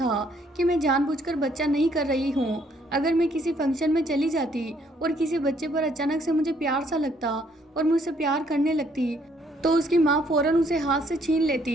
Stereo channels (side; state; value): both; normal; correlation 0.67